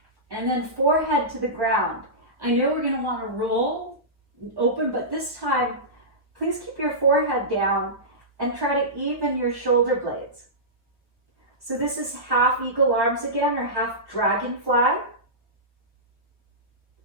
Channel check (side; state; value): left; late; 1.2 ms